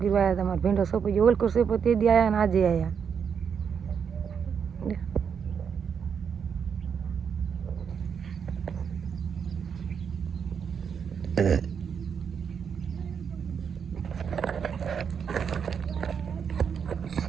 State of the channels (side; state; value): left; quieter; 7.0 dB